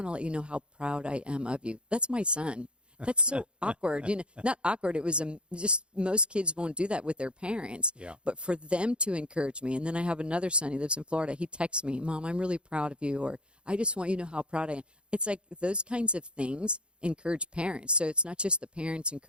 to let you know how proud I am of you. That's my son. That's so awkward. Not awkward. It was just most kids won't do that with their parents. Yeah. But for them to encourage me, and then I have another son. He lives in Florida. He texts me, Mom, I'm really proud of you, or I just want you to know how proud I am. It's like those kinds of things encourage parents. So it's not just the parents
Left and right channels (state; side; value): late; left; 0.055 ms